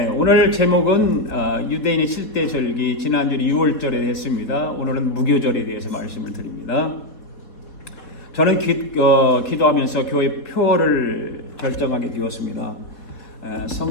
오늘 제목은 유대인의 7대 절기, 지난주에 6월절에 했습니다. 오늘은 무교절에 대해서 말씀을 드립니다. 저는 기도하면서 교회 표를 결정하게 되었습니다.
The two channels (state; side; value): late; right; 4.3 ms